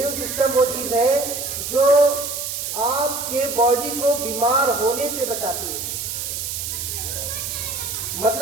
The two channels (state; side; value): noise; right; hiss, 4 dB below the sound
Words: सिस्टम वो चीज है जो आपके बॉडी को बीमार होने से बचाती है।